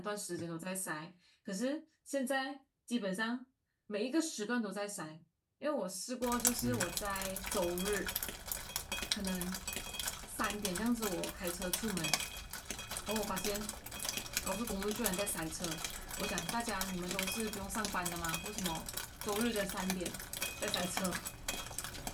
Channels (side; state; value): both; identical; correlation 1.00